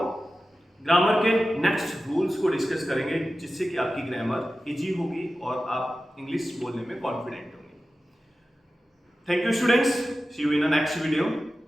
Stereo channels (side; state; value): both; normal; correlation 0.94